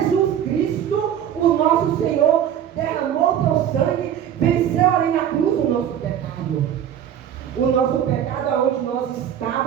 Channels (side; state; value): left; quieter; 9.8 dB